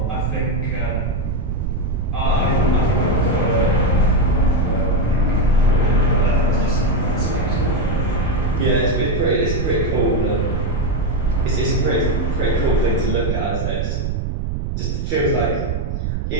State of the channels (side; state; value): right; noise; rumble, 2 dB below the sound